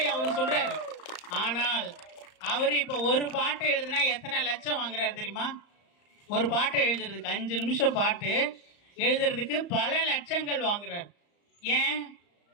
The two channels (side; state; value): right; late; 35 ms